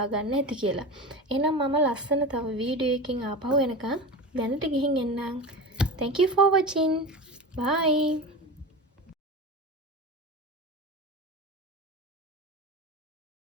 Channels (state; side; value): normal; both; correlation 0.27